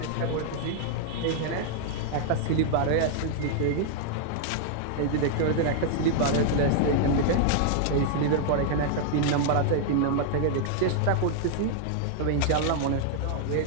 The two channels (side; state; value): both; different; correlation -0.01